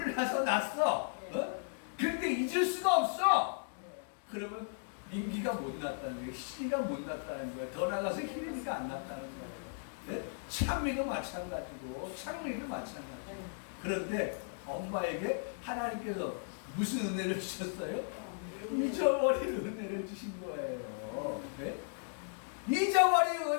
났어. 근데 잊을 수가 없어. 그러면 민기가 못 났다는 거예요. 희리가 못 났다는 거예요. 더 나가서 희리가 안 났다는 거예요. 창미도 마찬가지고 창미도 마찬가지고. 그런데 엄마에게 하나님께서 무슨 은혜를 주셨어요? 잊어버린 은혜를 주신 거예요. 잊어버린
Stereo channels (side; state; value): right; silent; digital silence